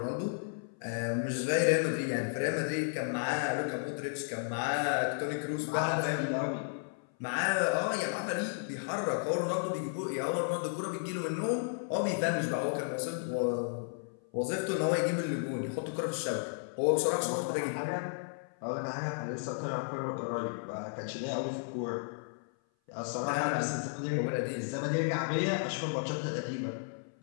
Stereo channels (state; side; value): silent; right; 55 dB below the other